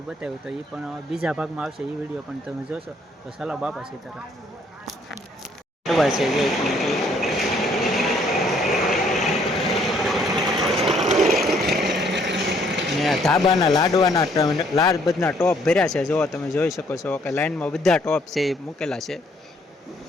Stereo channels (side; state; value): both; normal; correlation 0.65